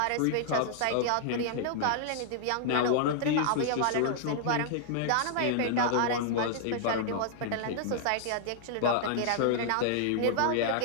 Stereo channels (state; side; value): different; both; correlation -0.01